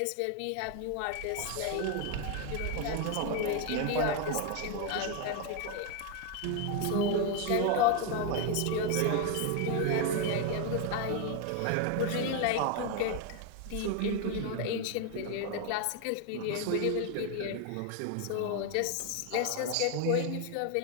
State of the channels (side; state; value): both; different; correlation 0.01